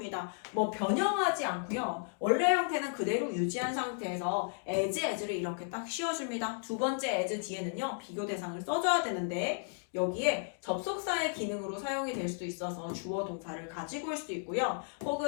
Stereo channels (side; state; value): right; silent; digital silence